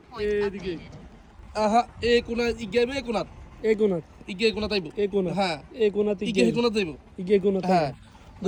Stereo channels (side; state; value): both; identical; correlation 1.00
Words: এদিকে আহা এ কোনা ইগাইব এ কোনাত এই কোণাত ইগে কোনাত আইব এই কোণা হ্যাঁ এই কোণাত ইগে কোনাত আইব ইগে কোণাত হ্যাঁ